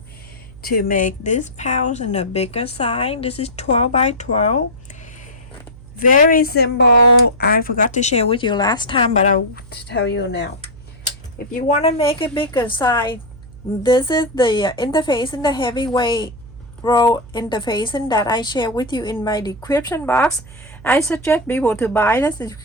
to make this pouch in a bigger size. This is 12 by 12. Very simple. I forgot to share with you last time, but I'll tell you now. If you want to make a bigger size, this is the interface in the heavyweight roll interfacing that I share with you in my description box. I suggest people to buy this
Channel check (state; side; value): noise; right; hum, 19 dB below the sound